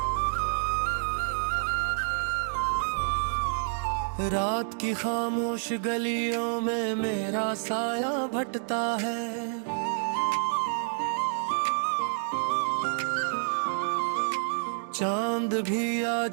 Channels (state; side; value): silent; left; digital silence